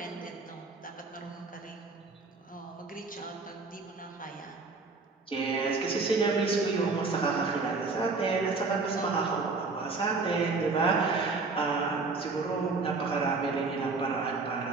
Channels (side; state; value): left; quieter; 4.0 dB